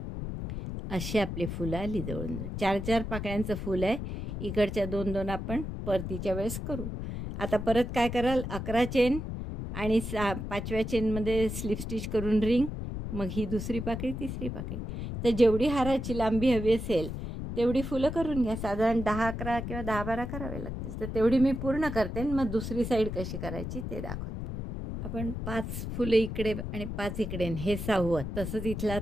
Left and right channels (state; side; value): noise; left; rumble, 5 dB below the sound